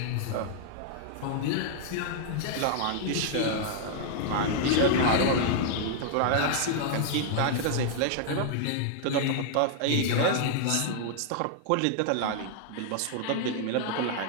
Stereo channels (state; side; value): different; both; correlation -0.01